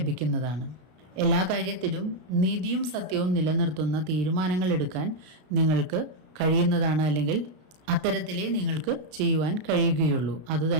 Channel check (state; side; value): late; left; 33 ms